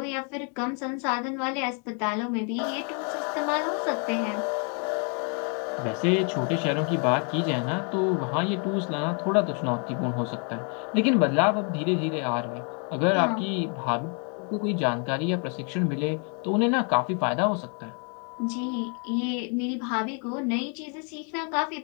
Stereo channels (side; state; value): right; quieter; 39.4 dB